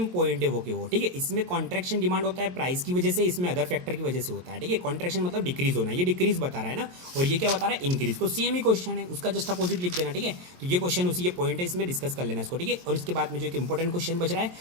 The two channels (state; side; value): late; left; 22 ms